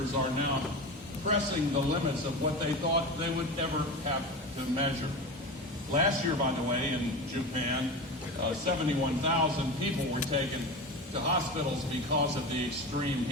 are now pressing the limits of what they thought they would ever have to measure. Last year, by the way, in Japan, 71,000 people were taken to hospitals because of the extreme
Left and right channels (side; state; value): both; normal; correlation 0.26